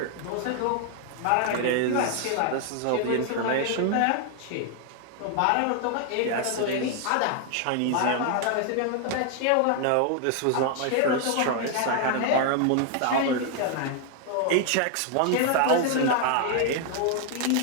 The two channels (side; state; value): both; different; correlation 0.00